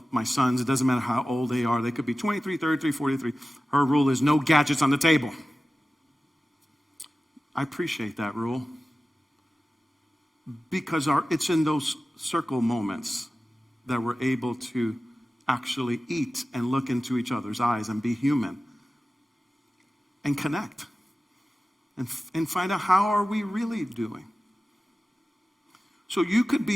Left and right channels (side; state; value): both; normal; correlation 0.95